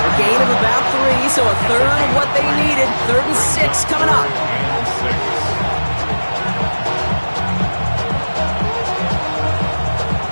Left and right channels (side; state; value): both; inverted; correlation -1.00